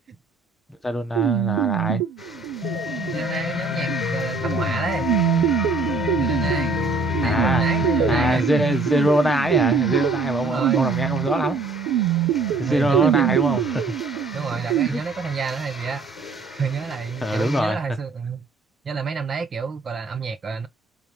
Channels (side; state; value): left; quieter; 3.5 dB